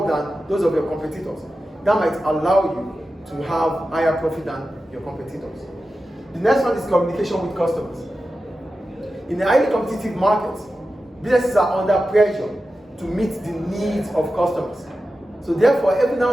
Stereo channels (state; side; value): normal; both; correlation 0.92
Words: than those of your competitors, that might allow you to have higher profit than your competitors. The next one is communication with customers. In a highly competitive market, businesses are under pressure to meet the needs of customers. So therefore, every